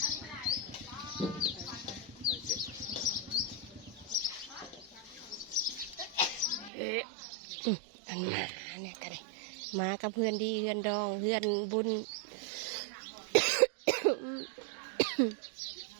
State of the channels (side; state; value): left; drops out; at 6.7 s